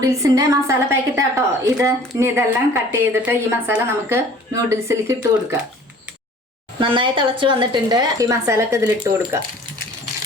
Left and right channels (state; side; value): normal; both; correlation 0.49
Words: മസാല പാക്കറ്റ് ആട്ടോ ഇത്. ഇനി ഇതെല്ലാം കട്ട് ചെയ്തിട്ട് ഈ മസാല നമുക്ക് നൂഡിൽസിലേക്ക് ഇട്ട് കൊടുക്കാം. നന്നായി തിളച്ച് വന്നിട്ടുണ്ട്. ഈ മസാല ഒക്കെ ഇതിലിട്ട് കൊടുക്കാം.